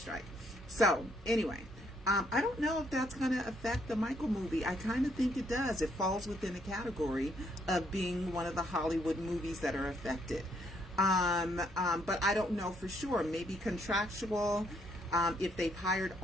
So anyway, I don't know if that's going to affect the Michael movie. I kind of think it does. It falls within the category of being one of the Hollywood movies that are affected. But I don't know for sure. Maybe contractual. If they've hired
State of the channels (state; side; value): normal; both; correlation 0.71